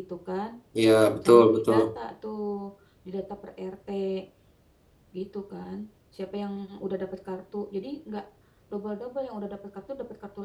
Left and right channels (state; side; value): identical; both; correlation 1.00